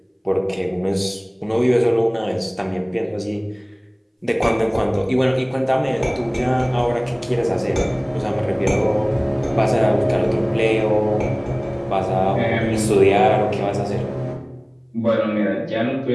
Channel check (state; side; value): identical; both; correlation 1.00